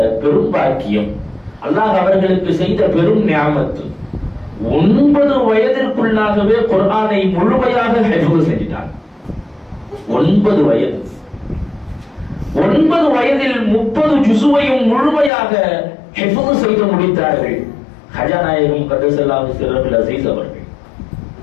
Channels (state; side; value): drops out; right; at 15.3 s